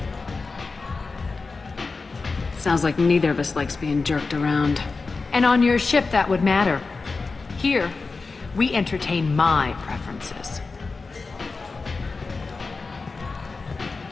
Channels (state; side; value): quieter; right; 4.1 dB